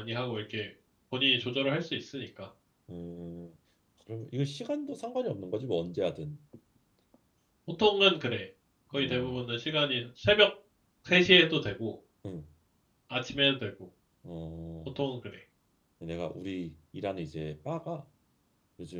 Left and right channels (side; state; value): both; identical; correlation 1.00